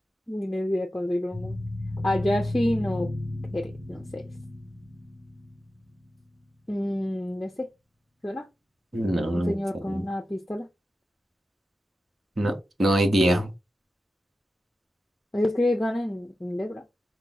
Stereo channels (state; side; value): normal; both; correlation 0.92